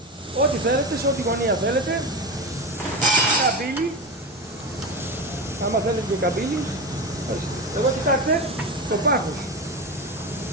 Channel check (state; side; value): normal; both; correlation 0.21